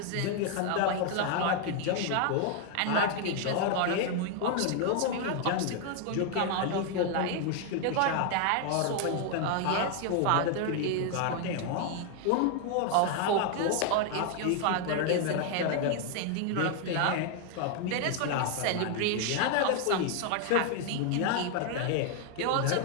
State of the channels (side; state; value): both; different; correlation 0.00